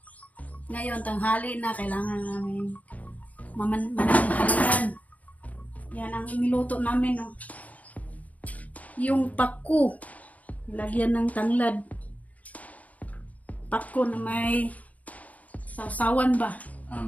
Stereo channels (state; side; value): late; right; 0.072 ms